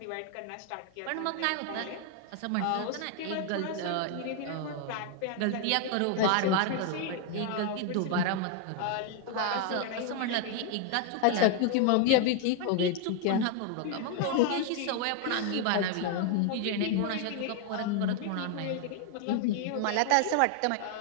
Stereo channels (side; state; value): both; different; correlation 0.00